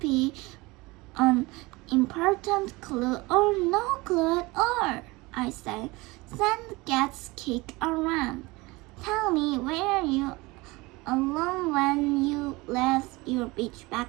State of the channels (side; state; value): left; quieter; 22.9 dB